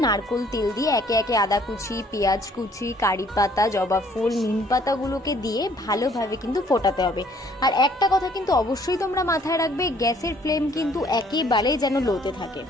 নারকোল তেল দিয়ে একে একে আদা কুচি, পেঁয়াজ কুচি, কারি পাতা, জবা ফুল, নিম পাতাগুলোকে দিয়ে ভালোভাবে কিন্তু ফোটাতে হবে। আর একটা কথা কিন্তু অবশ্যই তোমরা মাথায় রাখবে, গ্যাসের ফ্লেম কিন্তু একেবারে যেন লোতে থাকে।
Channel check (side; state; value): both; normal; correlation 0.61